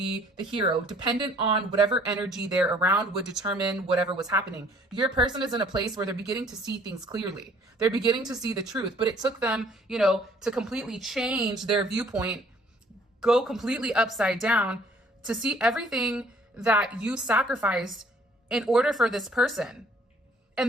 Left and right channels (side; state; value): both; normal; correlation 0.58